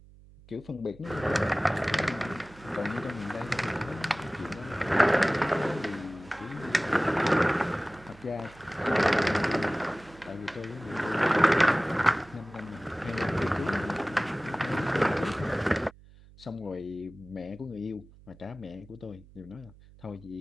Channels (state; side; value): noise; right; hum, 23 dB below the sound